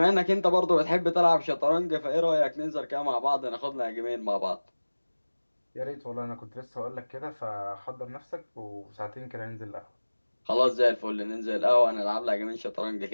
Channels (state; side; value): inverted; both; correlation -1.00